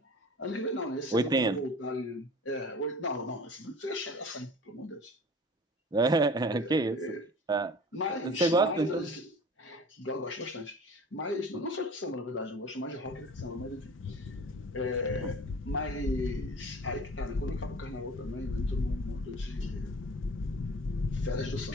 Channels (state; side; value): normal; both; correlation 0.42